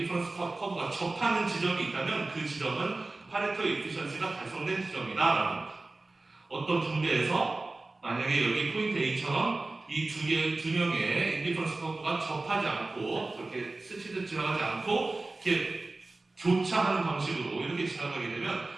커브가 접하는 지점이 있다면 그 지점은 파레토 이피션시가 달성된 지점이다라는 거예요. 어떤 분배에서 만약에 여기 포인트 A처럼 이 두 명의 인디퍼런스 커브가 접하지 않고 그렇게 스치듯 지나가지 않고 이렇게 교차하는 방식으로 이렇게 지나가게 되면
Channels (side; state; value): left; quieter; 3.2 dB